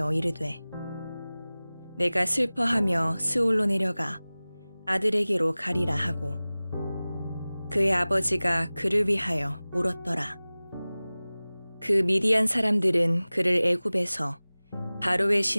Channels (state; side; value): inverted; both; correlation -0.98